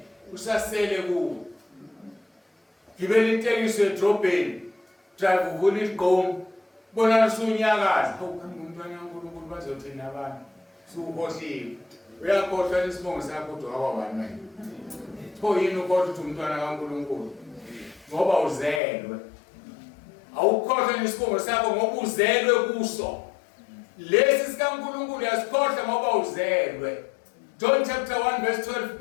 usasele kuwe gibela itekisi edrobheni drive uvula igqomo bona usunyakaza umntwana kaNkulunkulu bazothina abantu suhohliwe uyakhohlwa isibongo sakho kodwa awabani manje pho yini ukhohlwa ukuthi umntwana kaNkulunkulu ngoba uzelwe awukhohlwa isibongo sakho ngoba uzelwe kuso lesi sikaNkulunkulu yasikhohlwa ngoba uzelwe John chapter 1 verse 12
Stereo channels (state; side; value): drops out; right; at 18.8 s